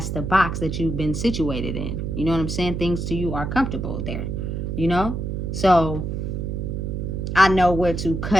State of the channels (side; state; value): right; noise; hum, 3 dB below the sound